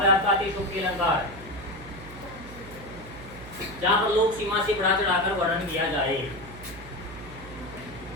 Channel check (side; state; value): right; noise; hum, 15 dB below the sound